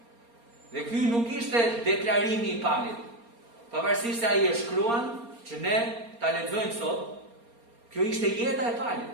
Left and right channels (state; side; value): late; left; 4.3 ms